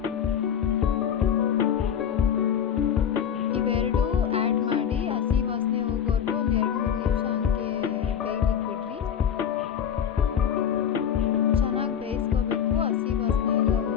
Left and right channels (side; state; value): right; quieter; 8.6 dB